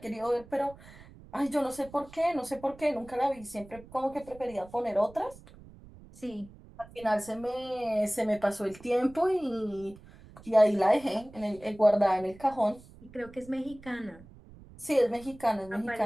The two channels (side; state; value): right; noise; rumble, 21 dB below the sound